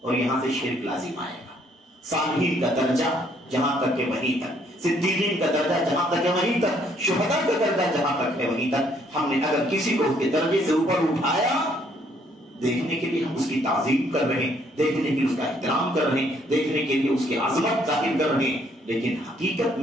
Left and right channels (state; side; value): normal; both; correlation 0.66